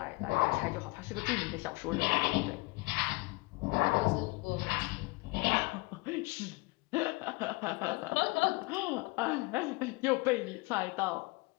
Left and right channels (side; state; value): right; quieter; 24.0 dB